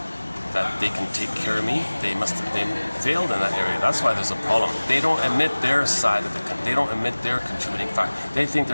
that they can take care of me. They failed in that area. That's why there's a problem. They don't admit their side of they don't admit their contributing factor. They think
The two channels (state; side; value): inverted; both; correlation -1.00